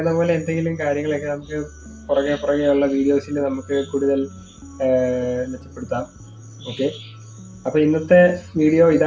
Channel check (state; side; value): identical; both; correlation 1.00